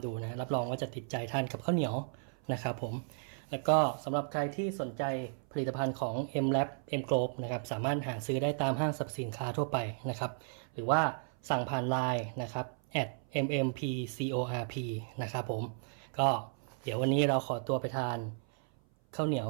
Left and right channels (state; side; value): silent; left; 55 dB below the other